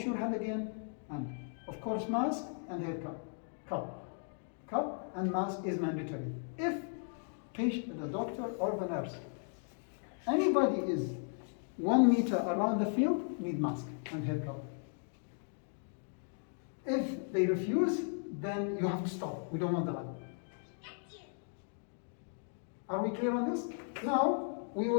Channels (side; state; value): right; silent; 53 dB below the other